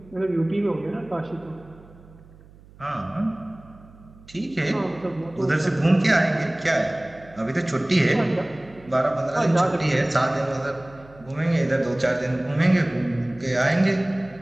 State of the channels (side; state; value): right; noise; hum, 23 dB below the sound